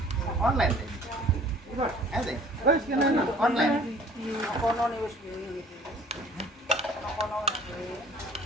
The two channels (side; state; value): both; normal; correlation 0.52